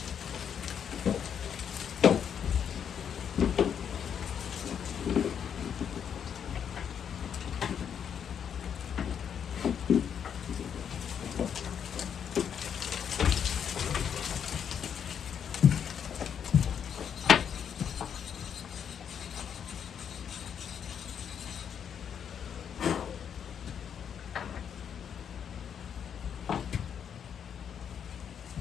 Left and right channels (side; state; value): right; quieter; 8.1 dB